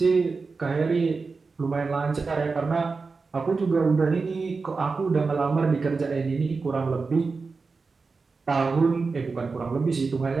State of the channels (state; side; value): quieter; left; 4.4 dB